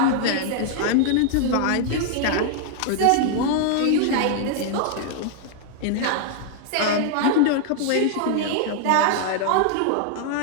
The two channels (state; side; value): different; both; correlation 0.00